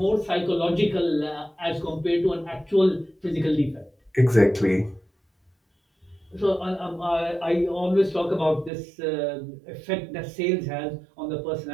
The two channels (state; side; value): drops out; left; at 8.7 s